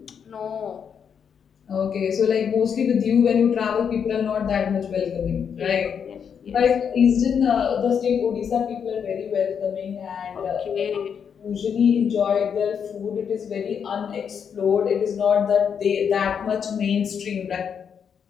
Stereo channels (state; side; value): quieter; right; 7.3 dB